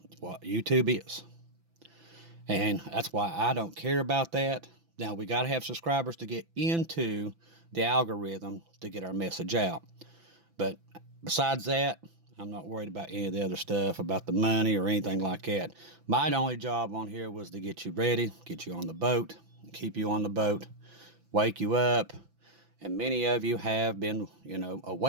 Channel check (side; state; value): left; late; 6.0 ms